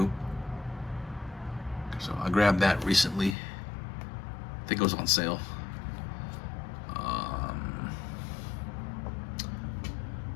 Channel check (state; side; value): drops out; right; at 3.4 s